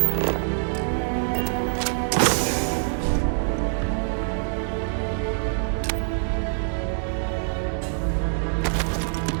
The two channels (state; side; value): silent; left; digital silence